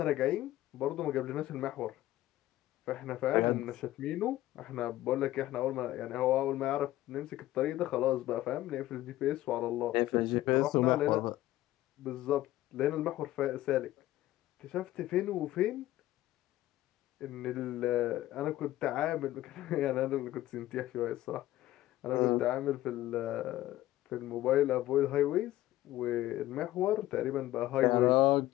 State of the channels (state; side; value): quieter; right; 15.4 dB